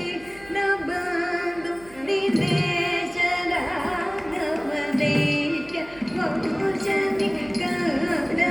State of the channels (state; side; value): noise; right; hum, 23 dB below the sound